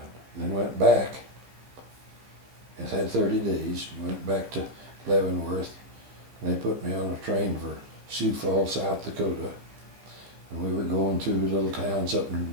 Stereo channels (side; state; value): left; late; 15 ms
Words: And then went back. It had 30 days. Went back to Leavenworth, and they put me on a train for Sioux Falls, South Dakota. And we were going through little towns up